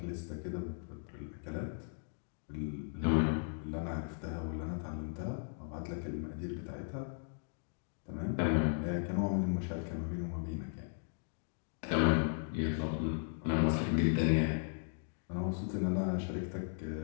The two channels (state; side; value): silent; right; digital silence